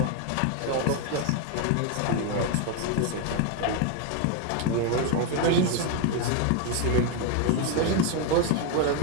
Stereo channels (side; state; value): both; different; correlation 0.02